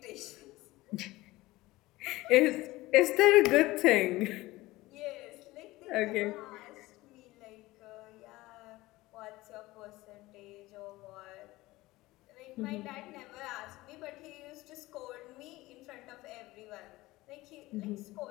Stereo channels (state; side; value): quieter; right; 19.0 dB